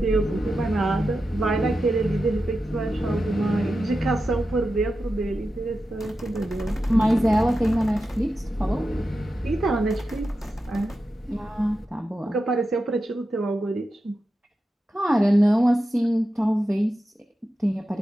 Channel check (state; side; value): normal; both; correlation 0.91